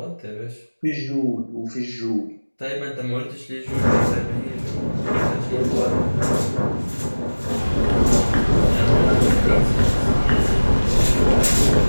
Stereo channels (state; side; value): inverted; both; correlation -1.00